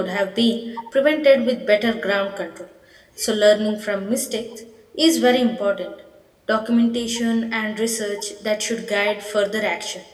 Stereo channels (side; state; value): both; identical; correlation 1.00